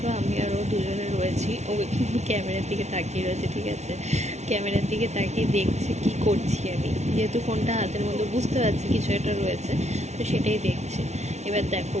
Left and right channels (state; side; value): late; left; 0.32 ms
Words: আমি আরও দুজনে রয়েছি। ও কিন্তু ক্যামেরার দিকে তাকিয়ে রয়েছে, ঠিক আছে, ক্যামেরার দিকে তাকিয়ে দেখছে কি করছি আমি, যেহেতু ফোনটা হাতের মধ্যে বুঝতে পারছি কিছু একটা রয়েছে, তো সেটাই দেখছে। এবার দেখো